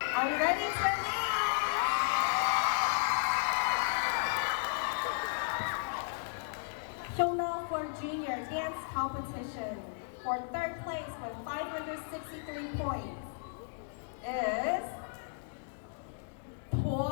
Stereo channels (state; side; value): silent; right; digital silence